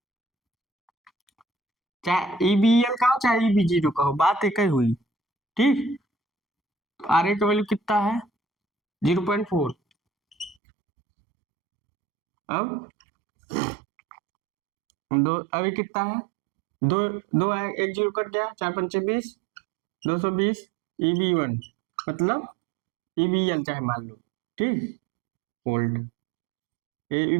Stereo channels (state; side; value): drops out; left; at 10.6 s